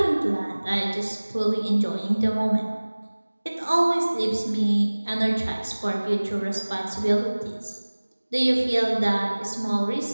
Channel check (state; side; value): inverted; both; correlation -1.00